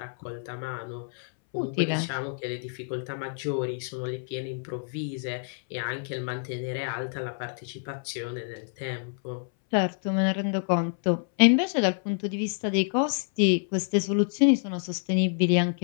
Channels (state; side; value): silent; right; 60 dB below the other